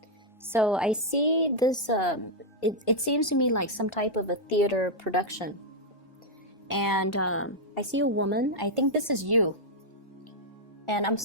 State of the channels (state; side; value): normal; both; correlation -0.03